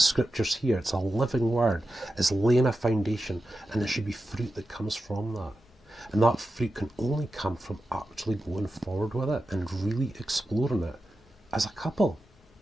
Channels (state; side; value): normal; both; correlation 0.91